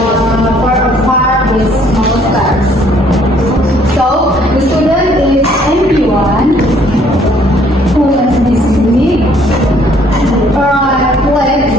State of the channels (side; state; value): both; normal; correlation 0.62